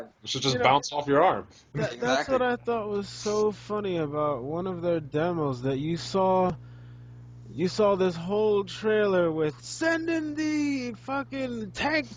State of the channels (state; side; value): identical; both; correlation 1.00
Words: it should You just know, bounce off your arm. that's Exactly. what I thought was so funny about one of their demos that you saw this whole trailer with send in the fucking tank